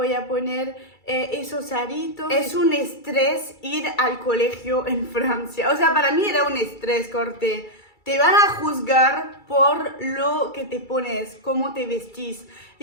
a poner esos aritos. Es un estrés ir al colegio en Francia. O sea, para mí era un estrés, corte. Te van a juzgar por lo que te pones, cómo te vestís.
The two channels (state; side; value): late; right; 2.3 ms